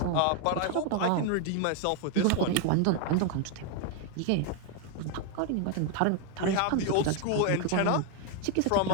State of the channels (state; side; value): different; both; correlation 0.01